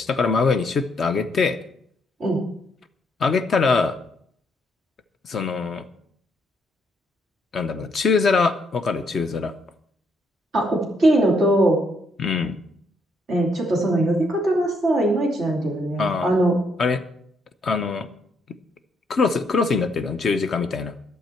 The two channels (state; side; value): normal; both; correlation 0.73